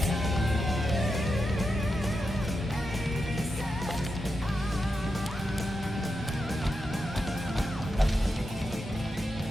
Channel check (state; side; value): normal; both; correlation 0.87